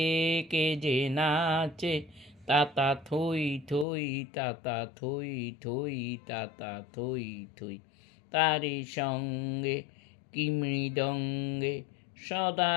কে যে নাচে, তাতা থই থই তাতা থই থই তাতা থই থই। তারি সঙ্গে কি মৃদঙ্গে সদা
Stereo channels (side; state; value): right; drops out; at 3.9 s